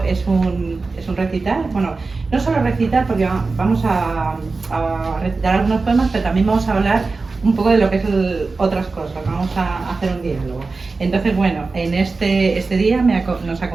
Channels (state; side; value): quieter; left; 4.0 dB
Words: es un recital. Bueno, no solo recital, porque vamos a recitar algunos poemas, pero también vamos a hablar un poco de lo que es otras cosas. Vamos a hacer un diálogo. Entonces, bueno, en este día nos